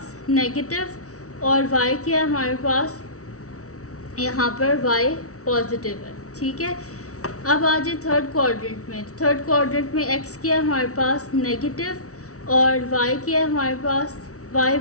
नेगेटिव, और y क्या है हमारे पास यहाँ पर y पॉजिटिव है, ठीक है। अब आ जाए थर्ड क्वाड्रेंट में, तो थर्ड क्वाड्रेंट में x क्या है हमारे पास नेगेटिव, और y क्या है हमारे पास, y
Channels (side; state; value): right; late; 0.65 ms